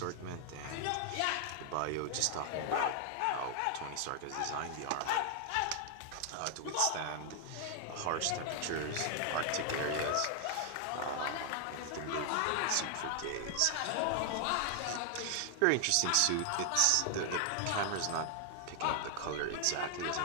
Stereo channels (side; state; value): both; different; correlation 0.00